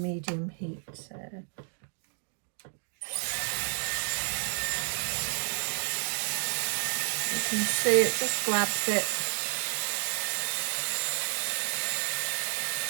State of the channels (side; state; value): left; silent; digital silence